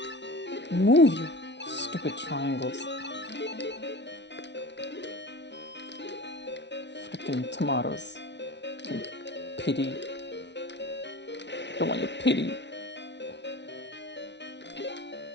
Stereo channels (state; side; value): late; right; 0.51 ms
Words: Move, you stupid triangles. Freaking tomatoes. Freaking pity. Don't want your pity.